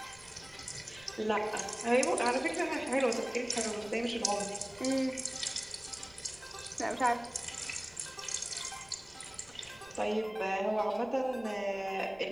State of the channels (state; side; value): noise; right; rumble, 25 dB below the sound